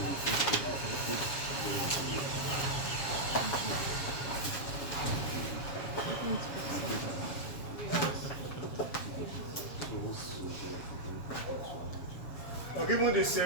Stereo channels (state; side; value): late; right; 7.3 ms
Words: You are given this